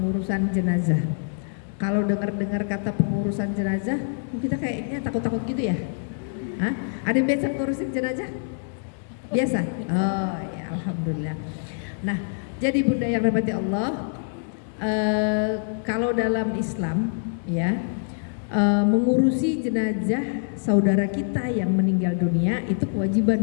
jenazah. Kalau dengar-dengar kata pengurusan jenazah, kita kayaknya takut-takut gitu ya. Hah? Ada yang biasa ngurusin jenazah? Biasa? Oh ya, alhamdulillah. Nah, jadi bunda yang dirahmati Allah, kalau dalam Islam ya, mengurusi jenazah saudara kita yang meninggal dunia itu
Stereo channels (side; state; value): right; silent; digital silence